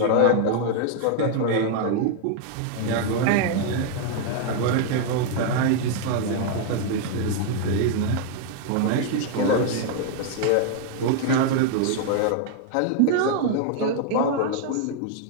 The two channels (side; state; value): both; different; correlation 0.00